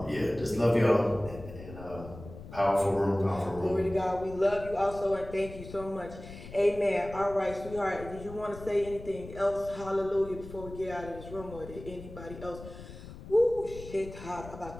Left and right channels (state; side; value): noise; left; rumble, 14 dB below the sound